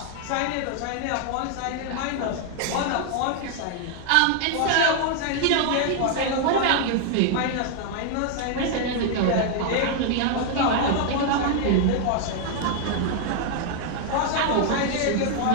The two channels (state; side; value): different; both; correlation 0.00